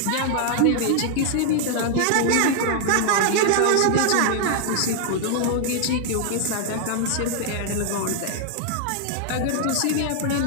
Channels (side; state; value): both; different; correlation 0.00